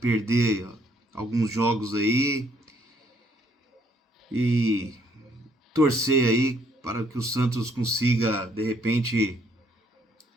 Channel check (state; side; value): normal; both; correlation 0.67